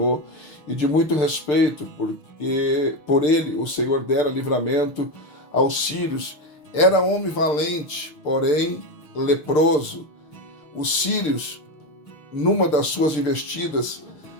e de muito respeito, porque por ele o Senhor dera livramento aos sírios. Era homem valente, porém leproso. Os sírios, numa das suas investidas,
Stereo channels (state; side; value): late; right; 6.7 ms